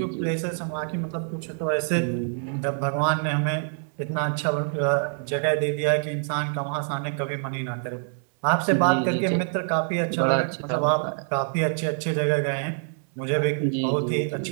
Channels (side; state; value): left; silent; 59 dB below the other